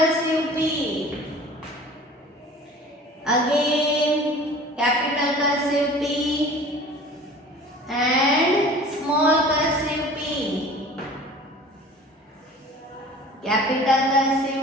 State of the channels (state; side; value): normal; both; correlation 0.44